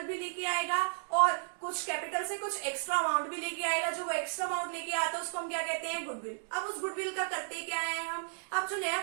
भी लेके आएगा और कुछ कैपिटल से कुछ एक्स्ट्रा अमाउंट भी लेके आएगा। जो वो एक्स्ट्रा अमाउंट लेके आता है उसको हम क्या कहते हैं, गुडविल। अब उस गुडविल का करते क्या है हम, अब जो नया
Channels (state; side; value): silent; left; digital silence